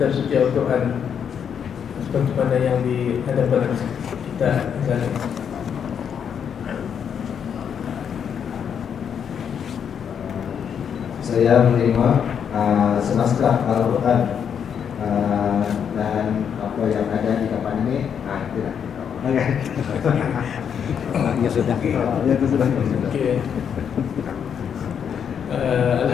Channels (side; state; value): right; quieter; 7.8 dB